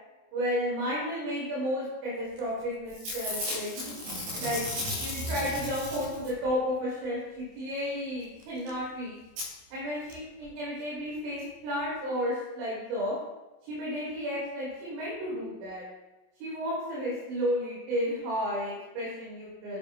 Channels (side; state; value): left; late; 27 ms